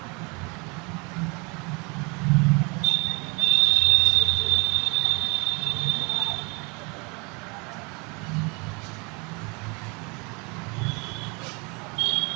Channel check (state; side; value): quieter; left; 29.9 dB